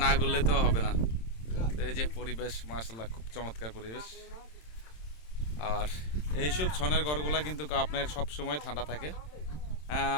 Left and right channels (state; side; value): late; right; 27 ms